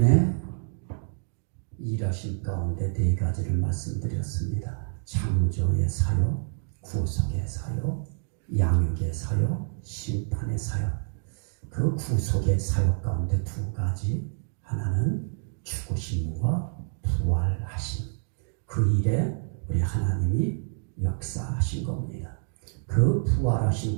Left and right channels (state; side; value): silent; left; digital silence